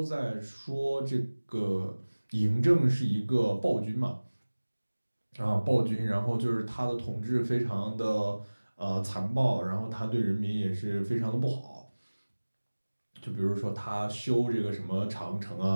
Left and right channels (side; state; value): both; inverted; correlation -1.00